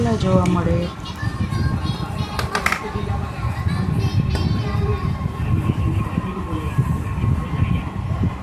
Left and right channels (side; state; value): both; identical; correlation 1.00